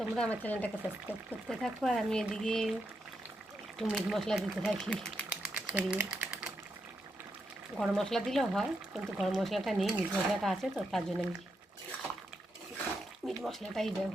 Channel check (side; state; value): both; normal; correlation 0.83